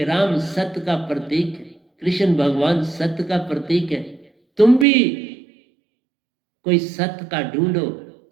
राम सत्य का प्रतीक है, कृष्ण भगवान सत्य का प्रतीक है। तुम भी कोई सत्य का ढूंढो,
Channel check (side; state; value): left; drops out; at 4.9 s